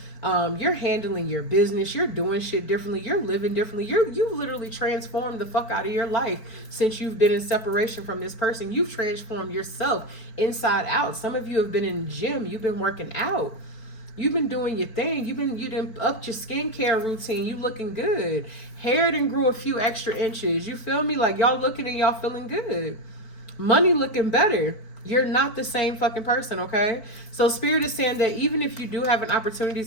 You're handling your business, you're doing shit differently, you're living differently. You've literally transformed the fuck out of your life since you've been in separation from this person. You've transformed yourself inside out. Some of you have been in the gym, you've been working out. You've been doing your thing. You done upped your skincare routine. You looking good. Hair done grew a few extra inches. You feel me? Like y'all looking and y'all feeling good. Money looking better. You're not the same fucking person, okay? So spirit is saying that even if you do have an opportunity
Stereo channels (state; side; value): late; right; 4.5 ms